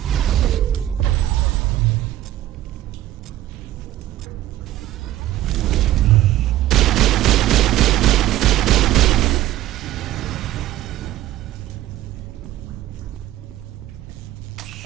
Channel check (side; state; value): left; quieter; 14.2 dB